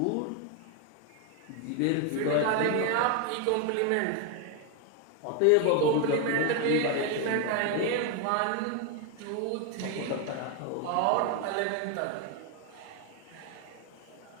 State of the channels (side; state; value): both; different; correlation 0.01